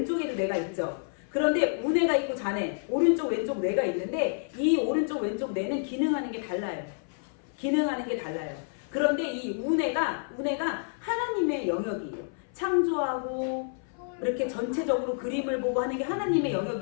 뇌가 있죠. 그런데 우뇌가 있고 좌뇌, 오른쪽 왼쪽 뇌가 있는데 이 오른쪽 왼쪽 뇌는 기능하는 게 달라요. 기능하는 게 달라요. 그런데 이 우뇌가 하나님의 영역이에요. 창조하고 이렇게 전체적으로 그림을 보고 하는 게 하나님의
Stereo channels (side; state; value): right; silent; 56 dB below the other